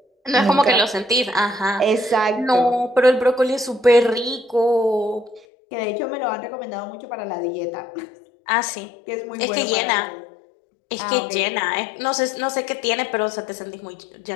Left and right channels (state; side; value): drops out; right; at 5.5 s